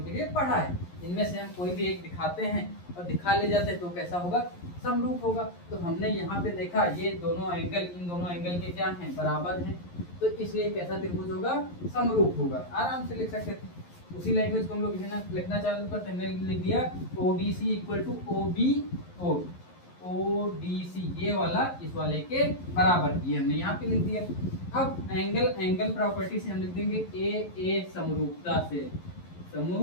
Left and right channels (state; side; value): late; right; 11 ms